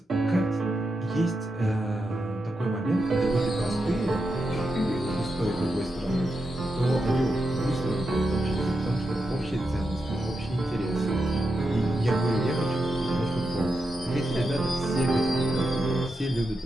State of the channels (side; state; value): both; normal; correlation 0.87